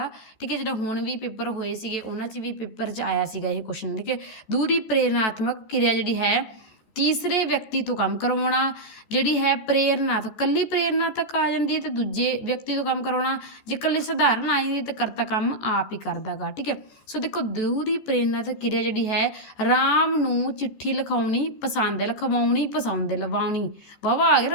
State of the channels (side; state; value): right; late; 14 ms